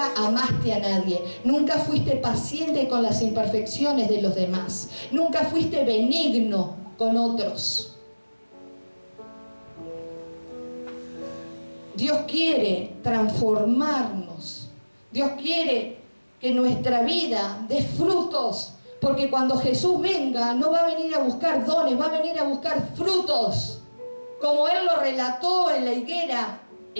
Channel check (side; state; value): both; inverted; correlation -1.00